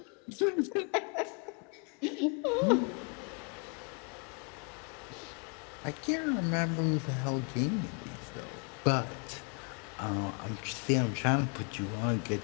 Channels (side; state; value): right; quieter; 37.4 dB